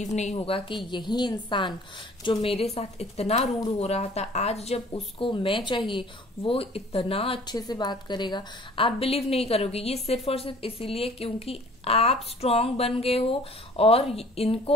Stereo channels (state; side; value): normal; both; correlation 0.51